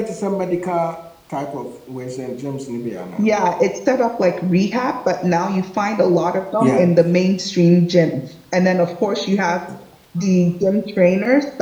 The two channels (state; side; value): identical; both; correlation 1.00